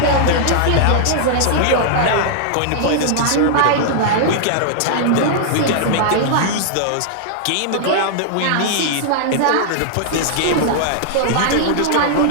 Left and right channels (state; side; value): different; both; correlation -0.01